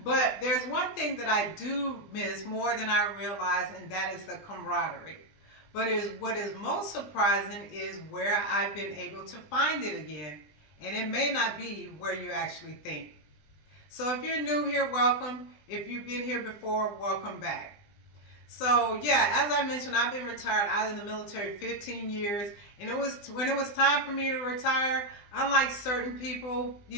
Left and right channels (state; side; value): late; right; 20 ms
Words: But there's one thing that I do miss more than I realize, and that is the camaraderie. But what is most surprising is where I've been able to find it again. And it may not be where you actually think. So if you're new here, welcome. If you've been here before, welcome back. So yeah, as I mentioned, I've been retired out of the military 15 years. And when it was time for me to retire, unlike certain people,